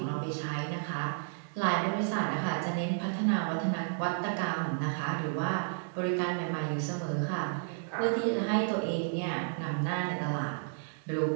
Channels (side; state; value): left; silent; digital silence